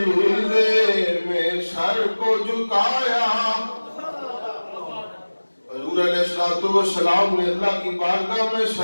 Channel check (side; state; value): both; inverted; correlation -1.00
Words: میں سر کو جھکایا، حضور علیہ السلام نے اللہ کی بارگاہ میں